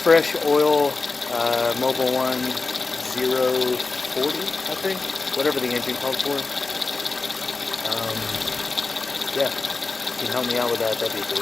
oil Mobile 1040, I think, whatever the engine called for. Yeah, if you can help me out with that, that'd be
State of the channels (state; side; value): quieter; right; 3.9 dB